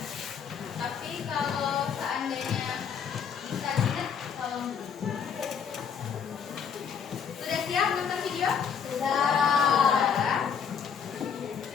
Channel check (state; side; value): quieter; right; 7.1 dB